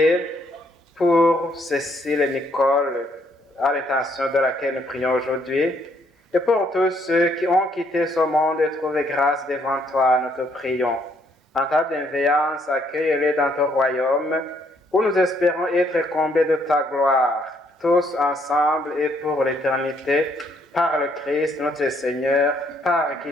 pour Cécile et Nicole, à l'intention de laquelle nous prions aujourd'hui, et pour tous ceux qui ont quitté ce monde et trouvé grâce devant toi, nous te prions. En ta bienveillance, accueille-les dans ton royaume, où nous espérons être comblés de ta gloire, tous ensemble et pour l'éternité, par le Christ notre Seigneur, par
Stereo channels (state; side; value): normal; both; correlation 0.69